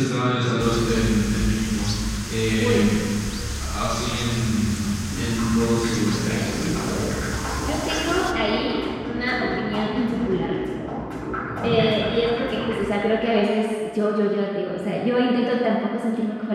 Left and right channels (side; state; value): both; identical; correlation 1.00